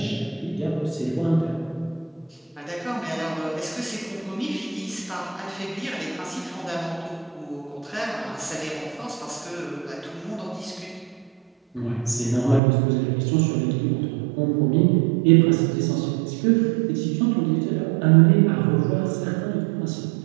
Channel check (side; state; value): left; drops out; at 12.6 s